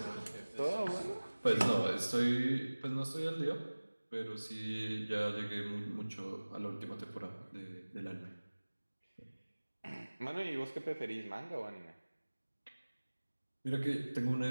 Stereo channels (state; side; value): inverted; both; correlation -1.00